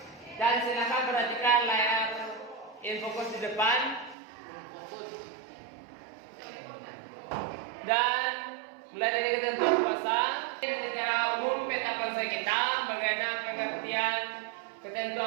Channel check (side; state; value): left; drops out; at 4.2 s